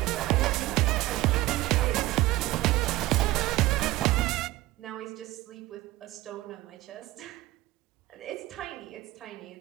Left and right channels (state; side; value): quieter; left; 17.7 dB